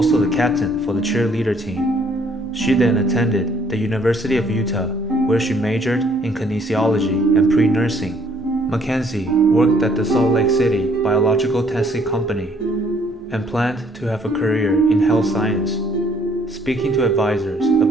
the captain for the cheerleader team. She then attended the University of Utah, where she majored in kinesiology and pre-nursing. Mackenzie worked at the Salt Lake City Biological Testing Company and planned to have a career in health science, speaking to advisors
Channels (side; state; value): both; normal; correlation 0.63